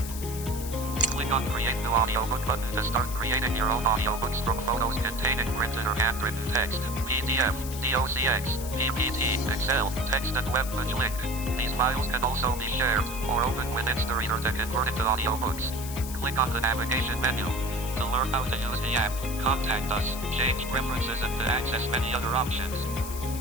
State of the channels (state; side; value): noise; left; hiss, 10 dB below the sound